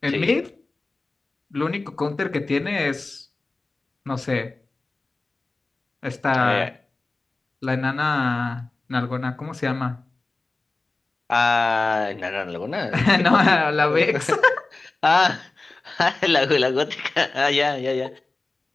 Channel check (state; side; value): quieter; right; 3.4 dB